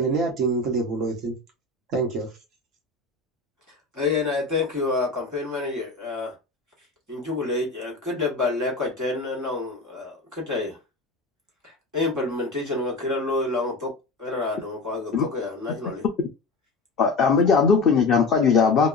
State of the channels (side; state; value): right; quieter; 3.4 dB